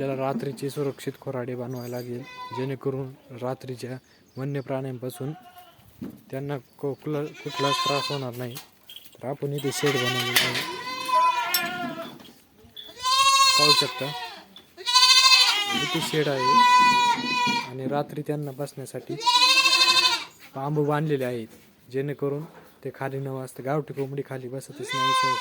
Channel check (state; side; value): identical; both; correlation 1.00